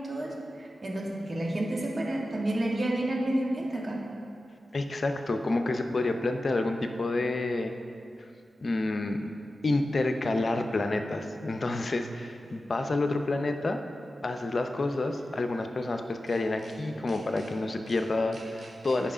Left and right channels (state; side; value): normal; both; correlation 0.93